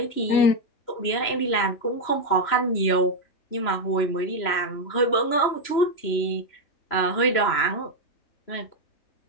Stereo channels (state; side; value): late; right; 3.0 ms